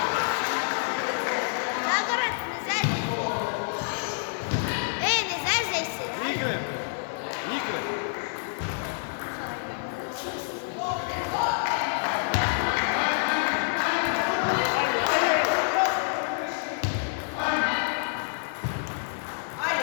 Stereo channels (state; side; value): silent; right; 60 dB below the other